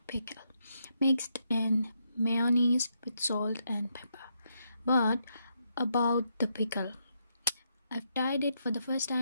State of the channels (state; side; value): inverted; both; correlation -0.79